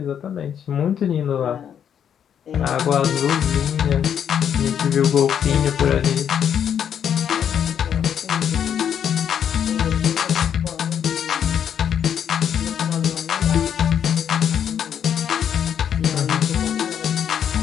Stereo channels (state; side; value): quieter; right; 8.7 dB